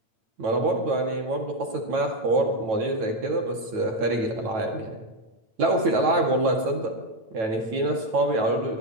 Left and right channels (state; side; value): late; left; 9.2 ms